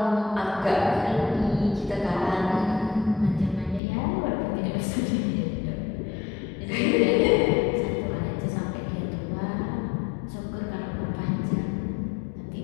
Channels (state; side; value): drops out; right; at 3.8 s